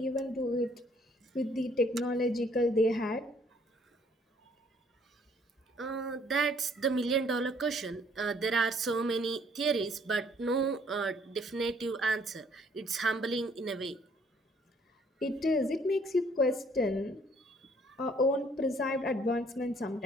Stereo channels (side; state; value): both; normal; correlation 0.62